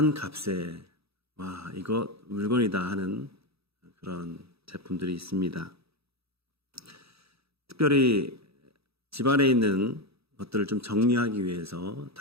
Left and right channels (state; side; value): late; left; 0.77 ms